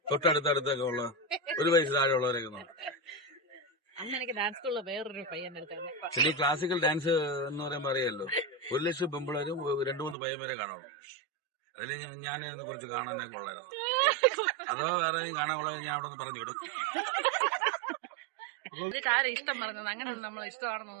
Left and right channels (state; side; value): drops out; left; at 10.2 s